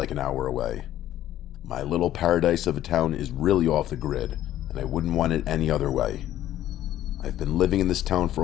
an hour away. My little paradise of a town is really off the grid, and I wouldn't want it any other way. I've been living in this town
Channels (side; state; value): right; quieter; 12.8 dB